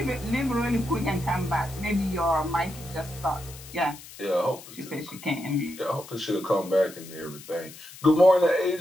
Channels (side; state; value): left; noise; hiss, 17 dB below the sound